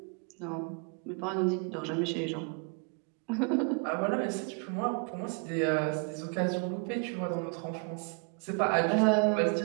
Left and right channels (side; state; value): left; quieter; 35.0 dB